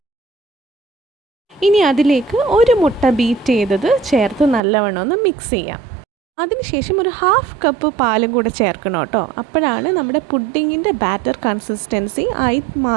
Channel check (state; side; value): drops out; left; at 4.6 s